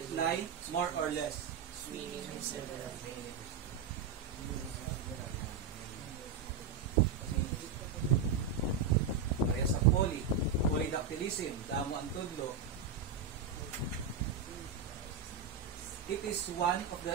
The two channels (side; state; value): left; quieter; 5.9 dB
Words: lie, more or less. Many and several. Kaya sa poly, polydactylism, damo ang tudlo. It is one of the